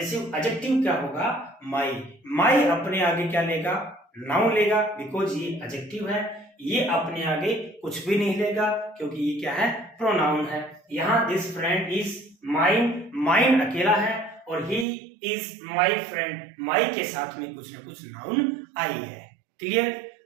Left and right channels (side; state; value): left; drops out; at 14.9 s